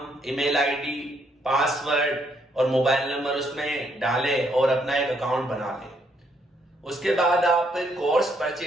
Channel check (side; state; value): both; normal; correlation 0.72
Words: ईमेल आईडी, पासवर्ड और मोबाइल नंबर उसमें डालें और अपना एक अकाउंट बना लें। उसके बाद आप कोर्स